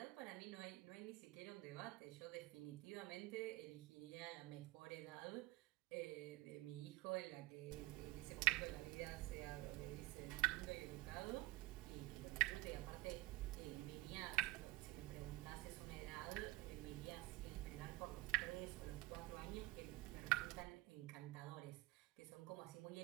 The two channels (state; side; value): quieter; left; 19.3 dB